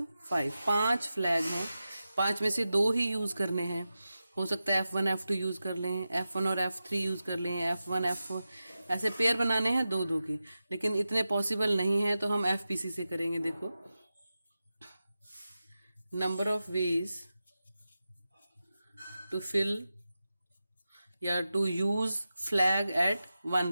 5 फ्लैग हैं। 5 में से 2 ही यूज करने हैं। हो सकता है F1 F2 यूज कर लें, F1 और F3 यूज कर लें, F1 F4, ऐसे पेयर बनाने हैं 2-2 के, लेकिन इतने पॉसिबल नहीं है तो हम एफपीसी से करेंगे। देखो, number of ways to fill या to use flag at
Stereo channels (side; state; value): both; inverted; correlation -0.93